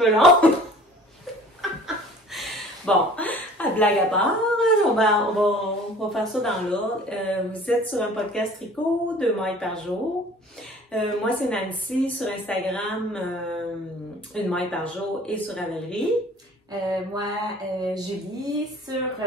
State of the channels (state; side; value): normal; both; correlation 0.48